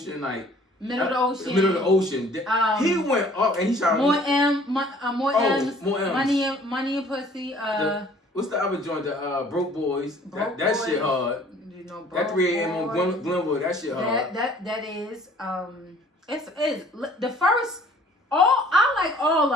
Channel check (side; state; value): both; normal; correlation 0.54